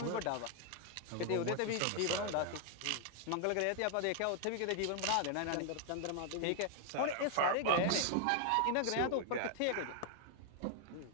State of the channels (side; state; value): both; different; correlation 0.00